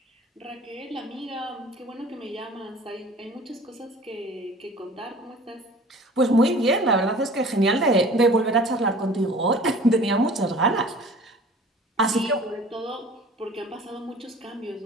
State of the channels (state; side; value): normal; both; correlation 0.45